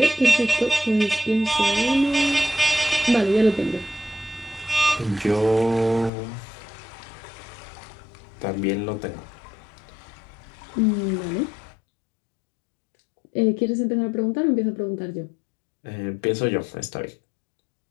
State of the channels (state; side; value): drops out; right; at 6.1 s